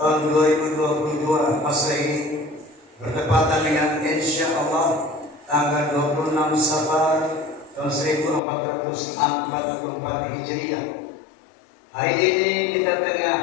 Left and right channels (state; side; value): drops out; right; at 8.4 s